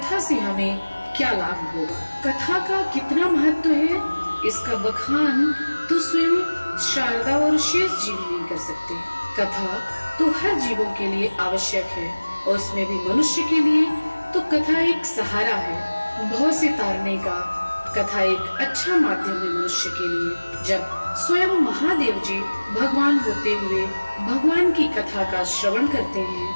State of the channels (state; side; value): inverted; both; correlation -1.00